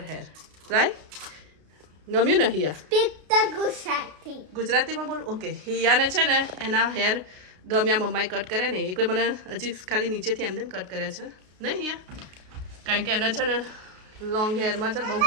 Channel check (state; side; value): late; left; 33 ms